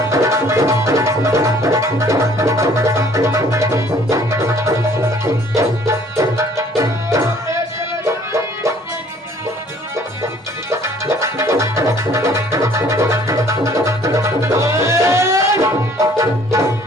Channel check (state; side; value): normal; both; correlation 0.57